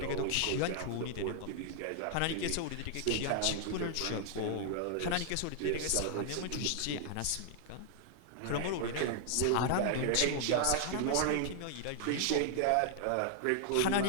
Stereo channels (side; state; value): both; different; correlation 0.00